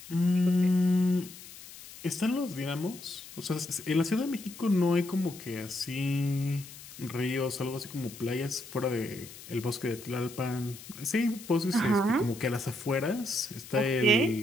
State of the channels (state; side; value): noise; left; hiss, 16 dB below the sound